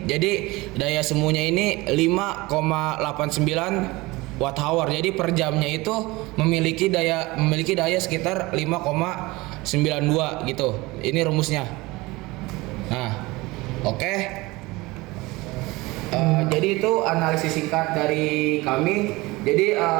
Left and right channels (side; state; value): left; quieter; 21.8 dB